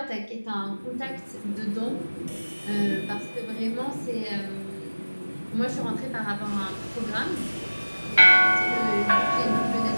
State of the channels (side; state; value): both; inverted; correlation -1.00